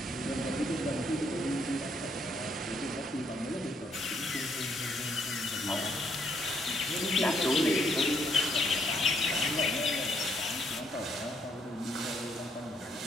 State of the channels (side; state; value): both; normal; correlation 0.72